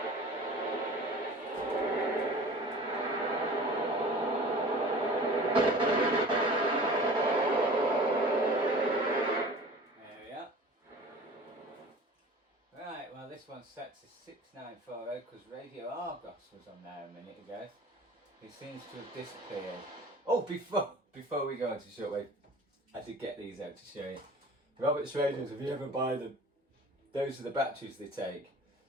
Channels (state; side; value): normal; both; correlation 0.42